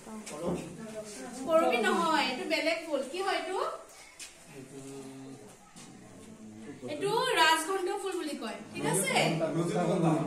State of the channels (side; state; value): both; identical; correlation 1.00